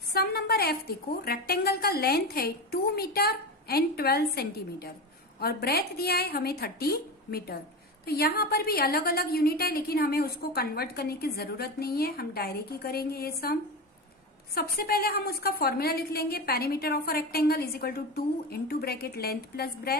सम नंबर एफ देखो, रेक्टेंगल का लेंथ है 2 मीटर एंड 12 सेंटीमीटर और ब्रेथ दिया है हमें 30 मीटर। तो यहां पर भी अलग अलग यूनिट है लेकिन हमें उसको कन्वर्ट करने की जरूरत नहीं है, हम डायरेक्ट ही करेंगे ये सम। सबसे पहले हम उसका फॉर्मूला लिख लेंगे, perimeter of a rectangle is equal to 2 into bracket length plus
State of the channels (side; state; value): both; normal; correlation 0.22